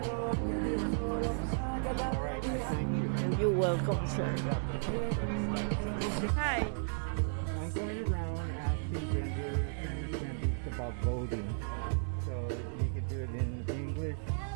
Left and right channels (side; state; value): left; silent; 55 dB below the other